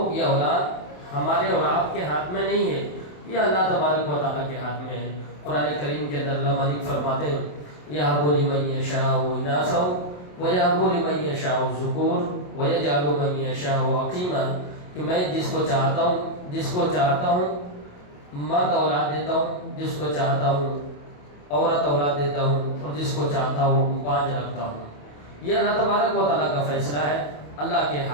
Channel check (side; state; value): right; late; 28 ms